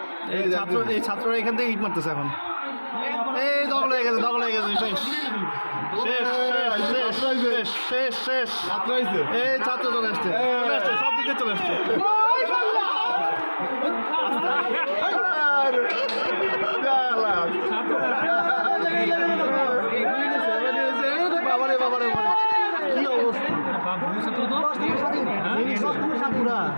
এই ছাত্ররা এখান থেকে ইট মারতেছে এখন এই দখল হয়ে গেছে শেষ শেষ শেষ শেষ শেষ শেষ আত্রাইছে এই ছাত্র চলে আসছে সব দিকে চলে আসছে বাবারে বাবারে কি অবস্থা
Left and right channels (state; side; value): inverted; both; correlation -1.00